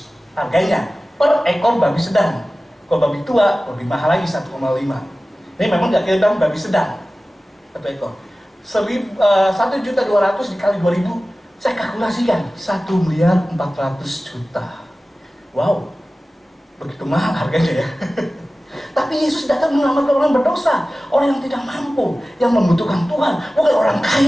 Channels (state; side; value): normal; both; correlation 0.96